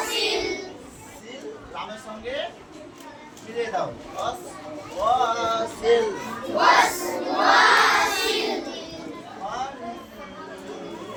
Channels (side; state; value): both; identical; correlation 1.00